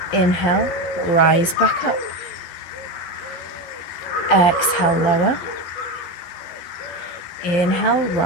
Inhale, rise back up. Exhale, lower. Inhale,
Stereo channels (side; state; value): right; late; 11 ms